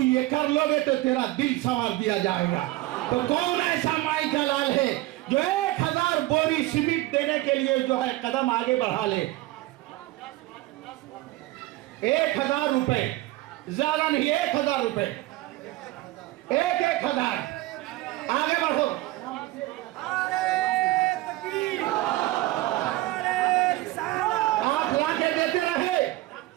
ये कर लोगे तो तेरा दिल संवार दिया जाएगा। तो कौन ऐसा माई का लाल है जो 1000 बोरी सीमेंट देने के लिए जो है कदम आगे बढ़ा ले? 1000 रुपए, ज्यादा नहीं, 1000 रुपए, 1000 आगे बढ़ो। आप लाके देते रहे,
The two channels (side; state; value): left; quieter; 18.0 dB